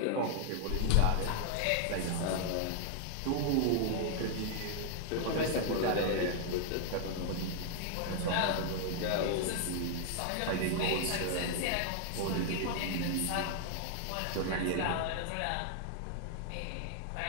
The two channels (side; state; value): both; different; correlation 0.00